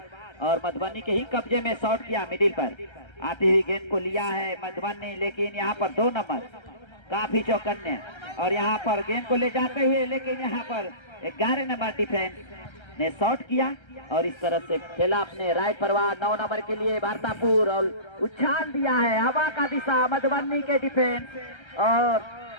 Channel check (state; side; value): late; right; 1.3 ms